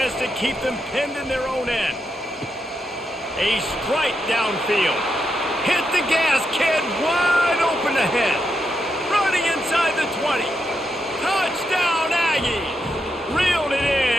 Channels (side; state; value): both; normal; correlation 0.83